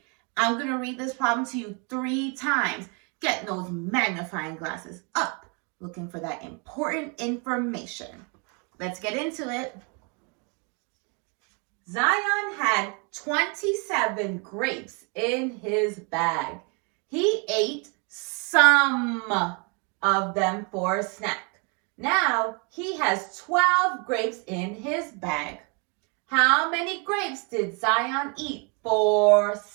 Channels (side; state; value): left; quieter; 34.4 dB